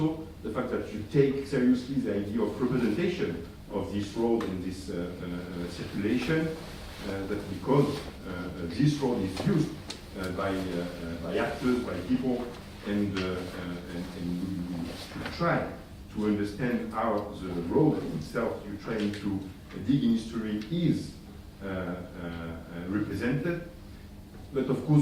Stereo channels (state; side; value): identical; both; correlation 1.00